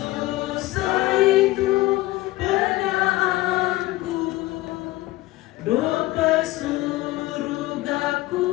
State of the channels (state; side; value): quieter; right; 18.5 dB